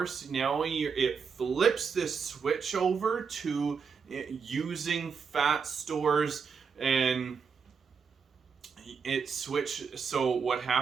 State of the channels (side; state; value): left; quieter; 5.9 dB